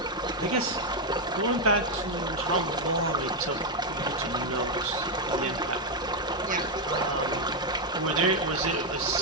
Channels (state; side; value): normal; both; correlation 0.02